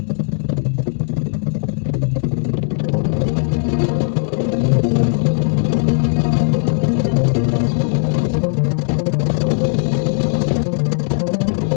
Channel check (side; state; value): right; silent; 67 dB below the other